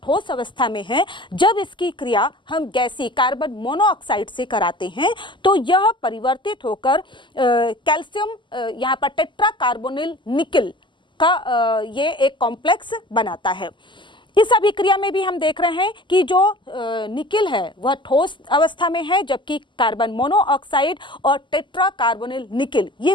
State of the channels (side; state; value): right; late; 0.23 ms